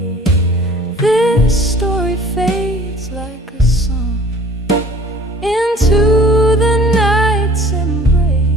This story fades like a song into the night's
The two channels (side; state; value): both; normal; correlation 0.50